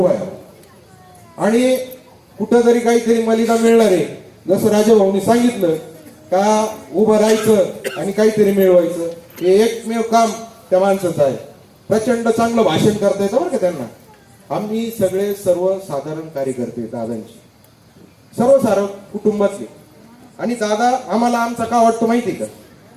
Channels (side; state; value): both; identical; correlation 1.00